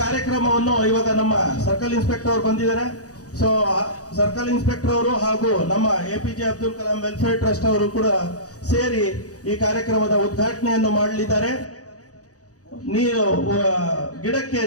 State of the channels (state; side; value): late; right; 0.67 ms